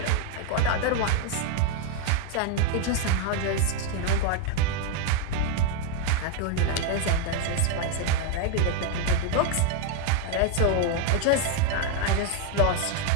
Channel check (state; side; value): different; both; correlation 0.01